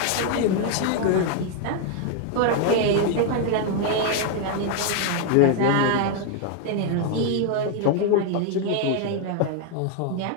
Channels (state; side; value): different; both; correlation 0.00